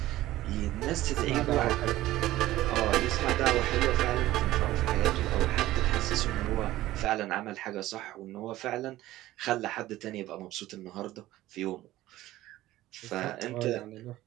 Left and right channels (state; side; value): quieter; left; 15.7 dB